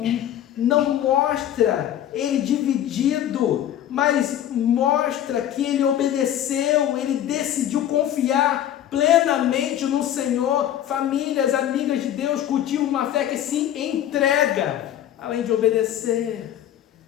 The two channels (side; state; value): right; quieter; 11.2 dB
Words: não mostra ele dividido, mas mostra que ele obedeceu, ele decidiu confiar plenamente no Senhor. Famílias, amigas de Deus, cultivam uma fé que se entrega, além de obedecer,